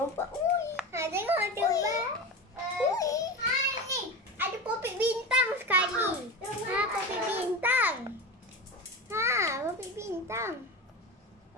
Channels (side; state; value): both; normal; correlation 0.25